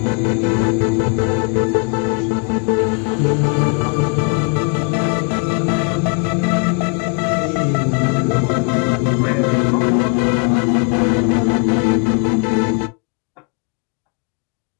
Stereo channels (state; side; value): quieter; right; 35.1 dB